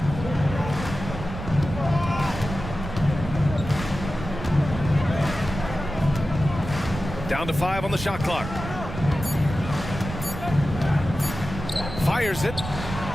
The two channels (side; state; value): right; noise; rumble, 8 dB below the sound